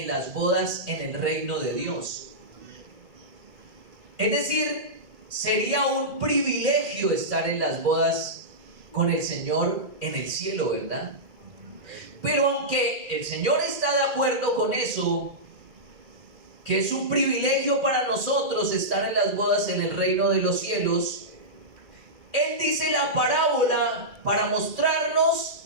las bodas en el reino de Dios. Es decir, sería un privilegio estar en las bodas con el Señor en el cielo, ¿verdad? Pero aunque el Señor está de acuerdo con eso, que es un privilegio para nosotros estar en las bodas en el reino de los cielos, Él dice la parábola para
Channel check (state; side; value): late; left; 2.2 ms